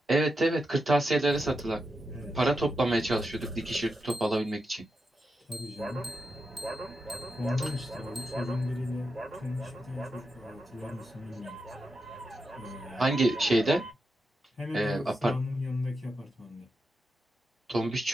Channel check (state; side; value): normal; both; correlation 0.87